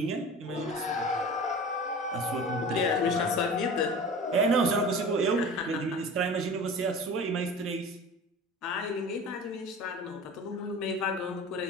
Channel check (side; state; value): both; normal; correlation 0.36